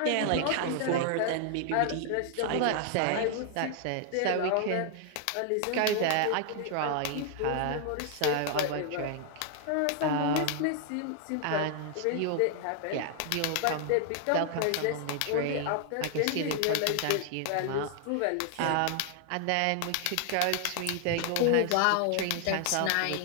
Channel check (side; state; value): both; different; correlation 0.00